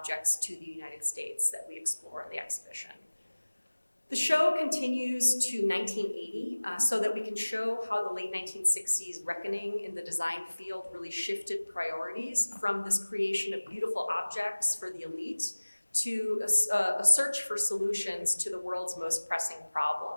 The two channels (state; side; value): inverted; both; correlation -1.00